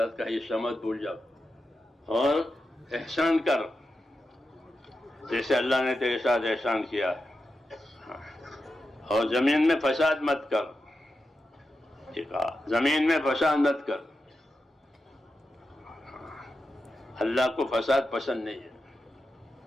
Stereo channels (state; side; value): normal; both; correlation 0.89